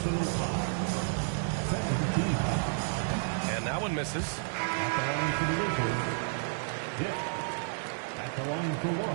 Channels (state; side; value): silent; left; digital silence